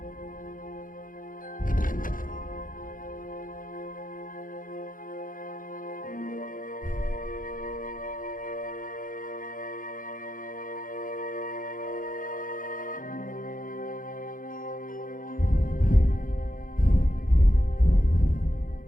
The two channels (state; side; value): late; right; 0.40 ms